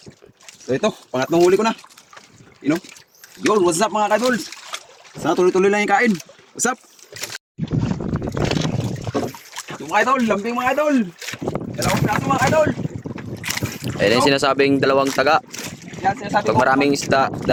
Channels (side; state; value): both; identical; correlation 1.00